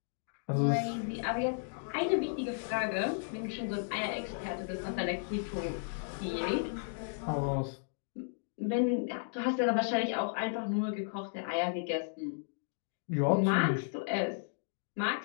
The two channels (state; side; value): silent; right; digital silence